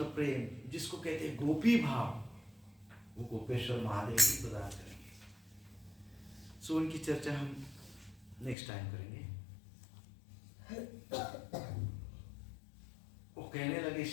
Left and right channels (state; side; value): drops out; right; at 8.6 s